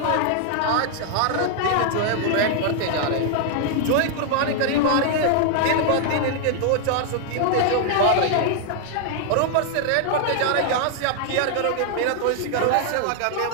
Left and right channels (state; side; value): different; both; correlation 0.00